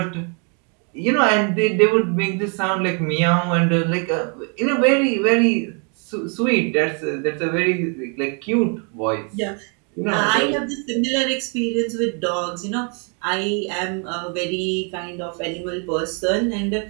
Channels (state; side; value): quieter; left; 38.3 dB